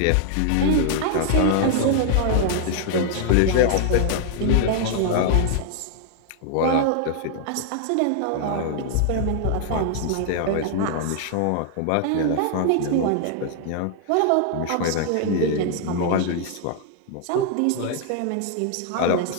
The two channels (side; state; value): both; different; correlation 0.00